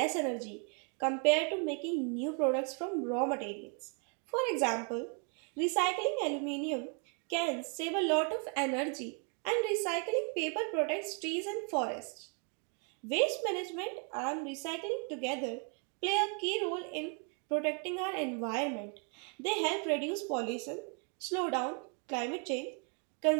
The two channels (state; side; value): quieter; left; 39.0 dB